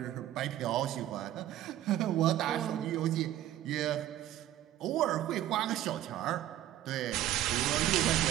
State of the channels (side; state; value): left; quieter; 12.9 dB